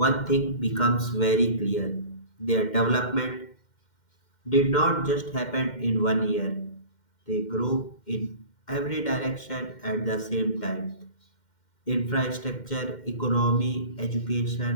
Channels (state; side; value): late; right; 2.1 ms